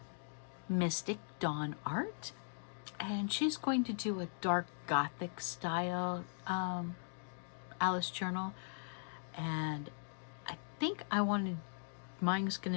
Mystic Dawn Art, and she's going to do a dark gothic style Alice journal, and I think mine's going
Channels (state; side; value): silent; right; digital silence